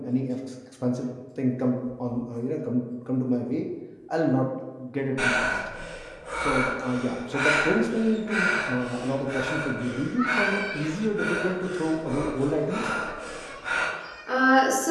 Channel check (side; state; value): both; identical; correlation 1.00